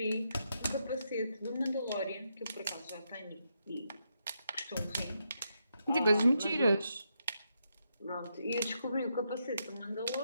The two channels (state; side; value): inverted; both; correlation -0.82